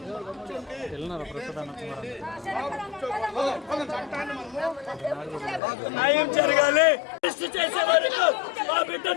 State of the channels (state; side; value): drops out; right; at 5.6 s